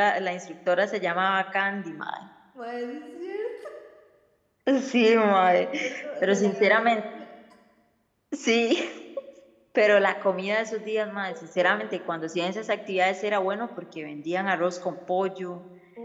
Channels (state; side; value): identical; both; correlation 1.00